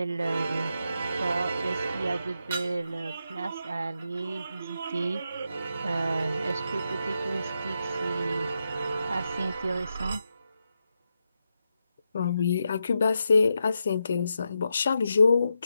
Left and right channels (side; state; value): both; inverted; correlation -0.85